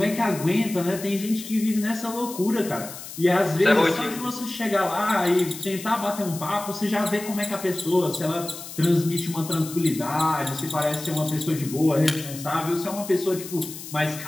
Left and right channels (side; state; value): left; noise; hiss, 12 dB below the sound